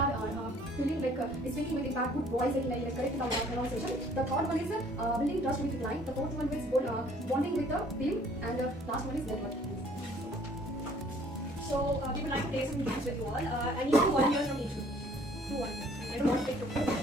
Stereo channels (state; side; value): normal; both; correlation 0.57